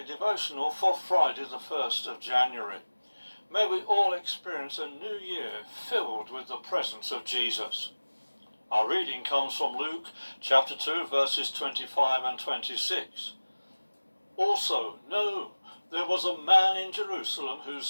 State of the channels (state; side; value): inverted; both; correlation -1.00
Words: devotional for Friday the 1st of January. May we all experience a new year filled with the presence of Jesus. Our reading comes from Luke chapter 2 verses 25 and 26. Also, know there was a man in Jerusalem